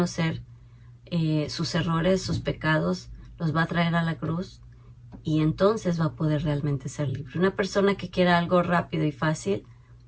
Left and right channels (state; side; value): identical; both; correlation 1.00